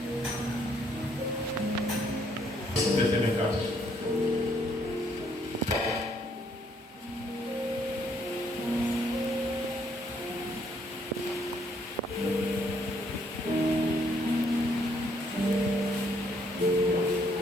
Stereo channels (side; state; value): both; normal; correlation 0.69